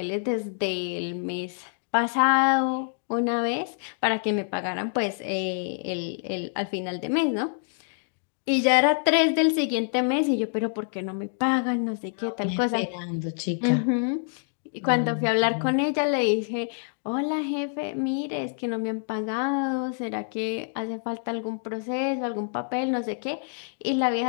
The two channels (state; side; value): silent; right; digital silence